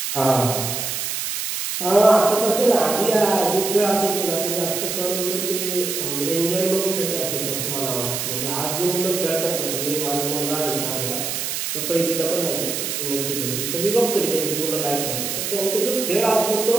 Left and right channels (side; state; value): right; noise; hiss, 3 dB below the sound